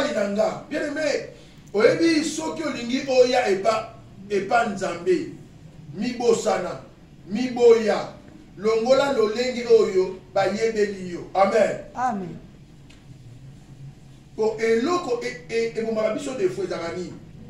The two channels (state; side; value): identical; both; correlation 1.00